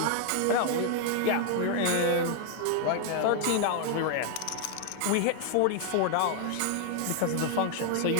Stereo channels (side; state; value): both; different; correlation 0.00